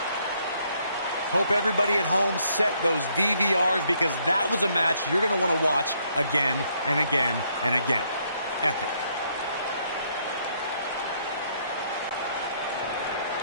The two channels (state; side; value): inverted; both; correlation -0.70